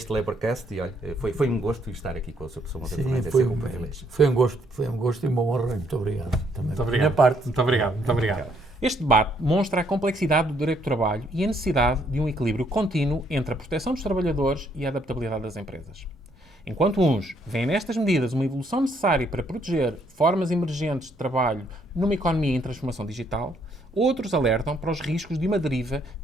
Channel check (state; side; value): normal; both; correlation 0.69